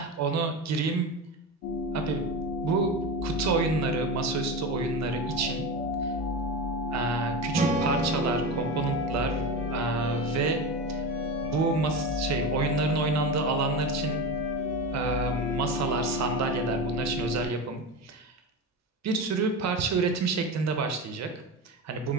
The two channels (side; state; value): both; normal; correlation 0.22